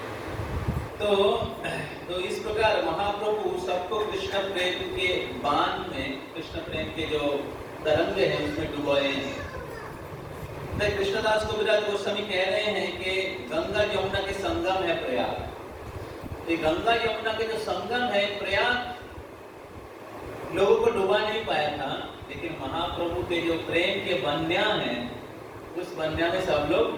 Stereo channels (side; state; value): both; identical; correlation 1.00